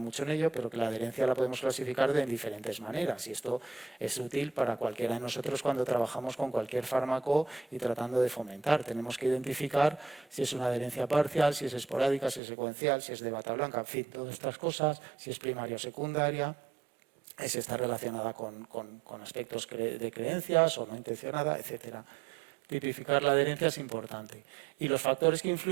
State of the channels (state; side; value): drops out; left; at 12.4 s